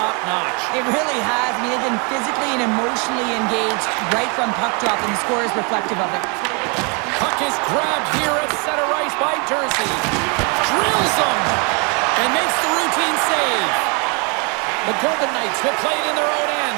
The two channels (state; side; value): quieter; left; 33.5 dB